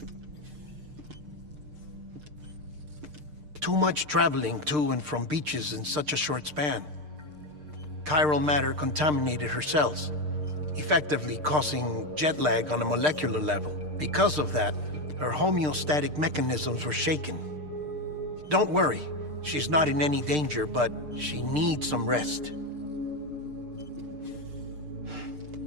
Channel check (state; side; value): late; left; 6.6 ms